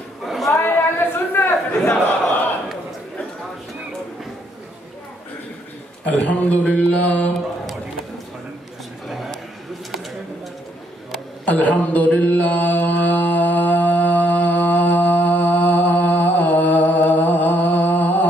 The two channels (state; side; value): normal; both; correlation 0.71